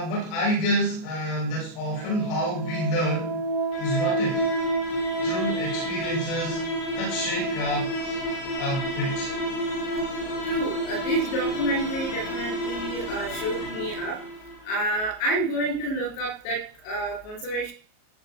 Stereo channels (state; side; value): late; right; 38 ms